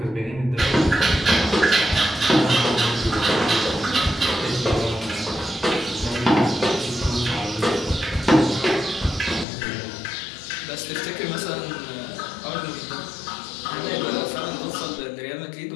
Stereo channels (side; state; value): right; drops out; at 9.5 s